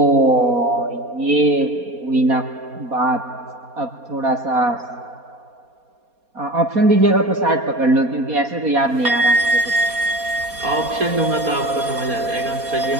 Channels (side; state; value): left; late; 4.2 ms